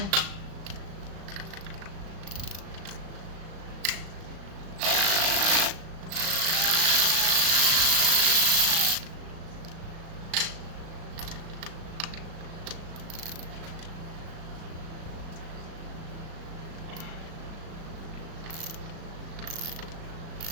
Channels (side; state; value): left; late; 36 ms